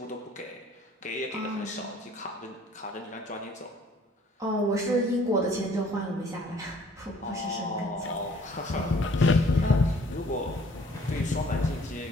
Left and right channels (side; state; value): both; normal; correlation 0.56